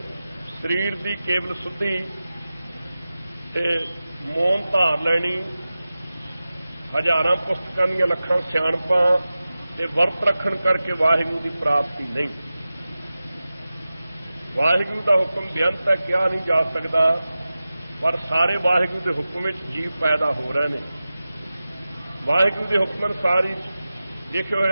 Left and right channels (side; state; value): both; inverted; correlation -0.95